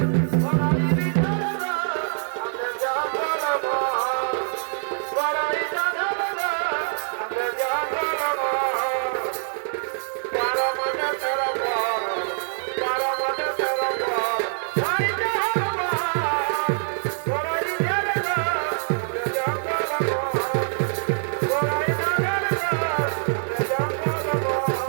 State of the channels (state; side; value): silent; left; digital silence